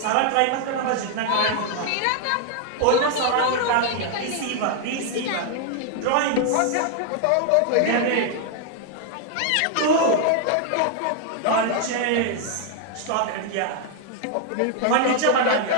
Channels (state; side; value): different; both; correlation 0.00